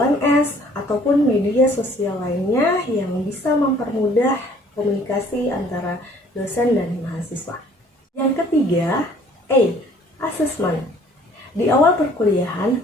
ataupun media sosial lainnya yang bisa mempermudah komunikasi antara dosen dan mahasiswa. Yang ketiga, A, assessment. Di awal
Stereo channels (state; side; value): normal; both; correlation 0.56